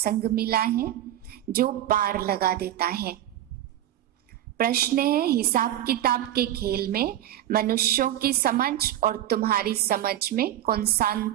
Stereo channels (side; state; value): left; quieter; 12.6 dB